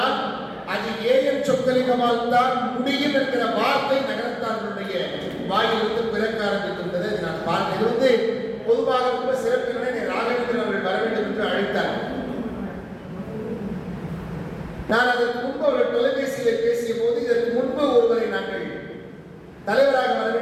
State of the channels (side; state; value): both; identical; correlation 1.00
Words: அது ஏஎன் சொக்கலிங்கமால் தான் முடியும் என்கிற வார்த்தை நகரத்தார்களுடைய வாயிலிருந்து பிறக்க ஆரம்பித்திருந்தது. நான் பார்த்தேன். இது வந்து பொதுவாக ரொம்ப சிறப்பினை ராகவேந்திரன் அவர்கள் வர வேண்டும் என்று அழைத்தார். நான் அதற்கு முன்பு அவர்கள் தொலைபேசியில் பேசிய போது இதற்கு முன்பு ஒருவரை நாங்கள் தலைவராக வர